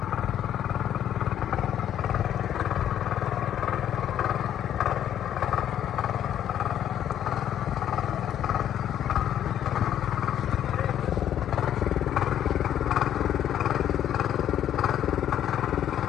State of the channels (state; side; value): quieter; right; 10.5 dB